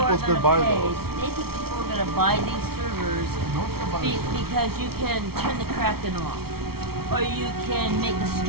going to buy those. They think people are going to buy these servers because you can turn the Kraken off. Or you can make a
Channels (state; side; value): late; left; 0.95 ms